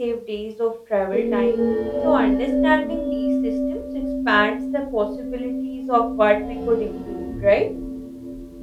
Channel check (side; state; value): both; identical; correlation 1.00